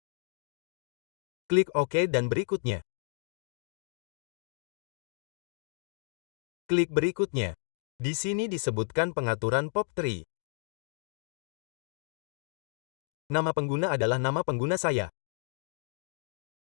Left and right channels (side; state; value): right; silent; digital silence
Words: Klik OK dan berikutnya. Klik berikutnya. Di sini disebutkan pengaturan POP3. Nama pengguna adalah nama pengguna saya.